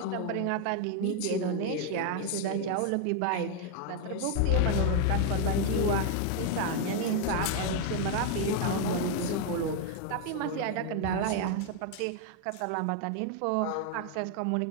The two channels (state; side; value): different; both; correlation 0.01